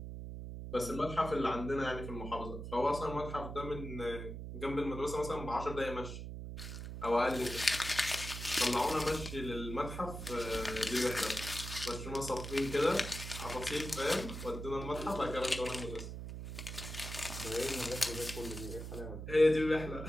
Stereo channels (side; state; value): right; noise; hum, 7 dB below the sound